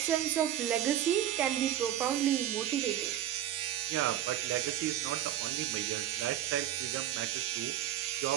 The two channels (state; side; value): quieter; left; 11.5 dB